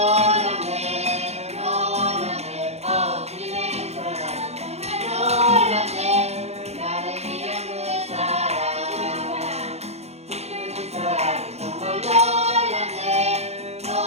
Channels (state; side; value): late; left; 0.31 ms